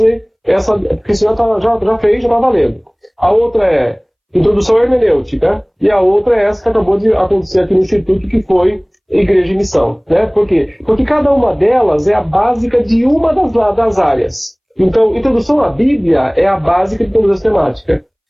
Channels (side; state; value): both; identical; correlation 1.00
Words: essa, porque senão já fez, já está valendo. A outra é introdução à hermenêutica, e a outra é essa que acabou de acontecer aqui no Instituto, que foi Igreja e Missão. Né? Por quê? Porque cada uma delas é a básica de uma das áreas. Então, introdução à Bíblia é a básica de toda a sistemática.